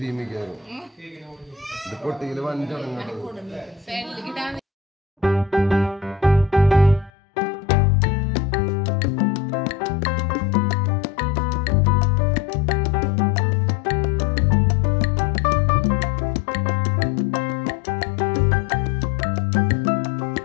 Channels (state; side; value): drops out; right; at 7.1 s